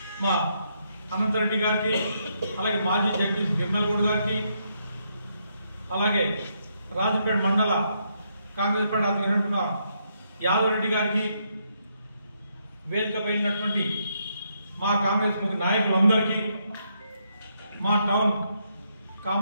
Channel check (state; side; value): inverted; both; correlation -0.77